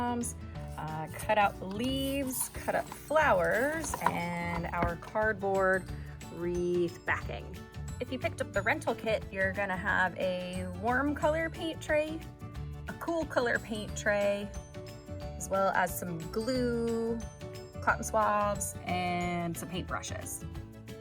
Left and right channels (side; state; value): both; identical; correlation 1.00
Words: cut out leaves, cut up flowers, and our cardboard wreath backing. If you picked up the rental kit, you're gonna have a warm color paint tray, a cool color paint tray, as well as some glue, cotton swabs, and some paintbrushes.